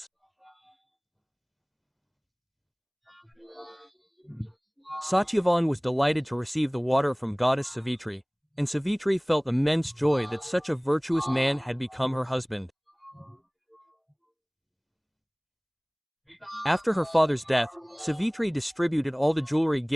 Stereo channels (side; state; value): both; identical; correlation 1.00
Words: Satyavan was delighted to receive the water from goddess Savitri, and Savitri felt immense joy that such a virtuous man had become her husband. After her father's death, Savitri distributed all the jewelry